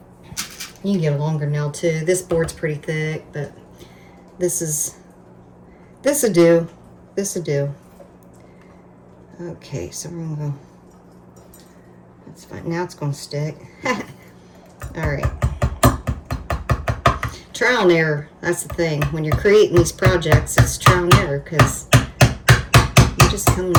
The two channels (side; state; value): both; identical; correlation 1.00